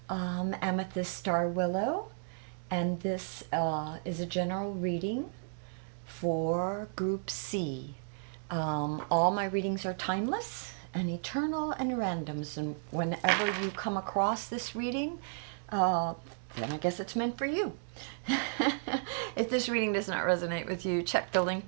Amethyst Star Willow, and this is a general reading for Group C. All my readings are timeless and eternal and random, so whenever you come across this reading, uh, then I guess it's meant for you. If this reading does not resonate with you, check the link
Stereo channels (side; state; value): left; silent; digital silence